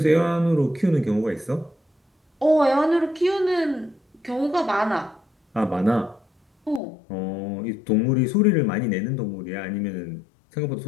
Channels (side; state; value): right; drops out; at 6.8 s